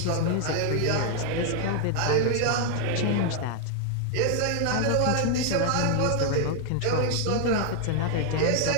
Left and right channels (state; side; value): different; both; correlation 0.00